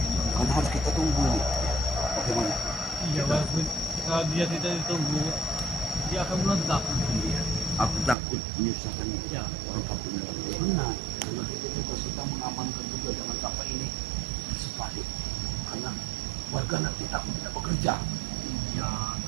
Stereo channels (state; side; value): drops out; left; at 8.2 s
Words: Karena harus kita tunggu ini. Bagaimana? Iya, walaupun kalau dia tidak ditunggu, dia akan meledak. Iya. Aku takut menyusahkan Ya. orang kampung. Benar. Karena kita juga sedang mengamankan juga jangan sampai ini sebalik. Karena warga nanti takut tidak bekerja. Ya,